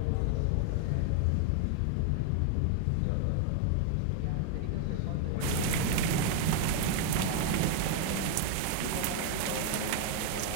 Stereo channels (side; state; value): both; different; correlation 0.00